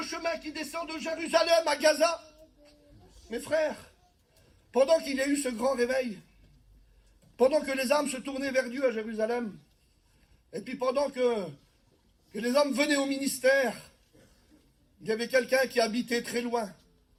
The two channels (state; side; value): identical; both; correlation 1.00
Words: chemin qui descend de Jérusalem à Gaza. Mes frères, pendant qu'il y a eu ce grand réveil, pendant que les âmes se tournaient vers Dieu à Jérusalem, et puis pendant que les hommes venaient au ministère, il y avait quelqu'un qui habitait très loin.